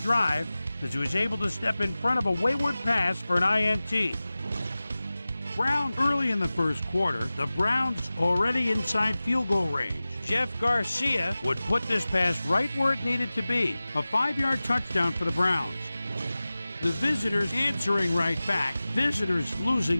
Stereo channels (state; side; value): inverted; both; correlation -0.97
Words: as he was able to step in front of a wayward pass for an INT. Brown early in the first quarter, the Browns already inside field goal range. Jeff Garcia would put this pass right where it needed to be, a 5-yard touchdown for the Browns. The visitors answering right back, visitors